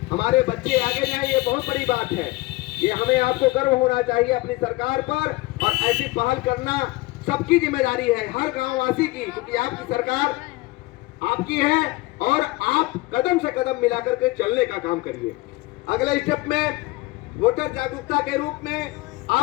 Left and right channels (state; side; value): quieter; right; 21.2 dB